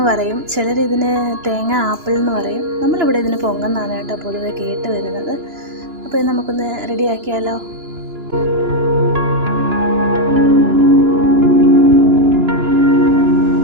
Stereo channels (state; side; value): late; left; 2.9 ms